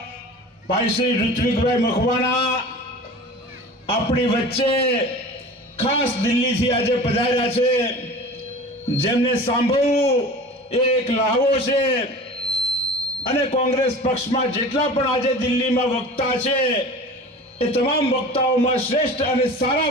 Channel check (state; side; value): normal; both; correlation 0.38